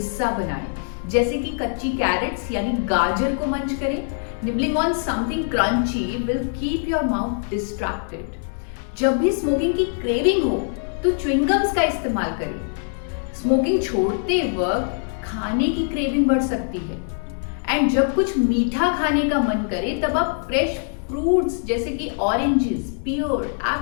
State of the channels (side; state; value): right; silent; 64 dB below the other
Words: बनाएं, जैसे कि कच्ची कैरेट्स यानी गाजर को मंच करें। Nibbling on something crunchy will keep your mouth distracted. जब भी स्मोकिंग की क्रेविंग हो तो च्युइंगम्स का इस्तेमाल करें। स्मोकिंग छोड़ते वक्त खाने की क्रेविंग बढ़ सकती है एंड जब कुछ मीठा खाने का मन करे तब आप फ्रेश फ्रूट्स जैसे कि ऑरेंजेस, पियर,